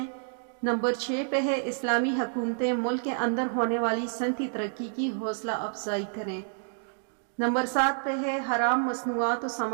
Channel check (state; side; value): silent; left; digital silence